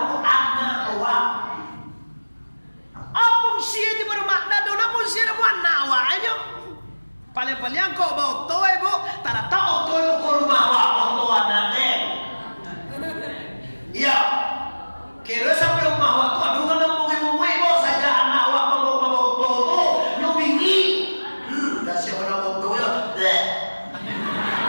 anak awak. Apung siya di baru makna doon apung siya na buwan na awaan nyo. Paling-paling ko ba ito eh bu. Tara tao ito yung kurumawa ito natin. Iya. Kira sampai umawa ito. Aduh nga nang mungay-mungay mo. Sadya anak awak mabaw ito ito. Lumingi. Kasi ako na ito yun.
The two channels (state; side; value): inverted; both; correlation -1.00